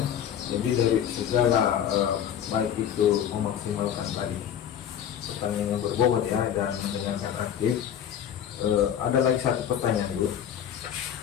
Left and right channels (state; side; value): quieter; right; 9.4 dB